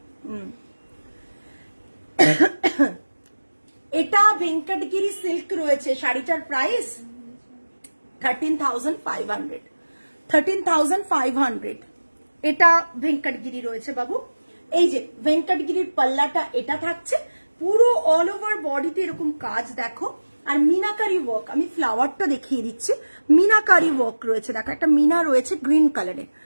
এটা ভেঙ্কটগিরি সিল্ক রয়েছে, শাড়িটার প্রাইস 13,500। 13,500 এটা ভেঙ্কটগিরি রয়েছে বাবু। এই যে ভেঙ্কটগিরির পাল্লাটা এটা থাকছে, পুরো অল ওভার বডিতে এরকম কাজ দেখো, আর মিনাকারি ওয়ার্ক। আমি ফ্লাওয়ারটা দেখিয়ে দিচ্ছি, মিনাকারি ওয়ার্ক রয়েছে, দেখো একটা মিনা রয়েছে গ্রিন কালারে,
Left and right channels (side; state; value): both; inverted; correlation -1.00